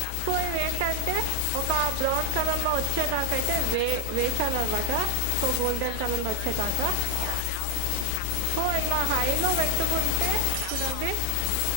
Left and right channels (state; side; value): different; both; correlation 0.00